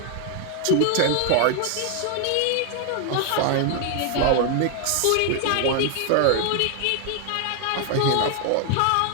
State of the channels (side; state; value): both; different; correlation 0.00